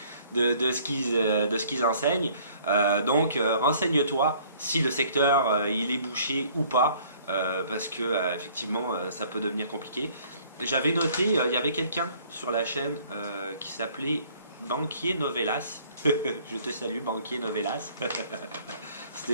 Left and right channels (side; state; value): both; inverted; correlation -0.57